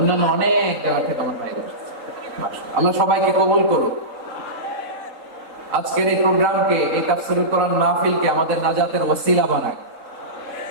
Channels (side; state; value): left; late; 3.8 ms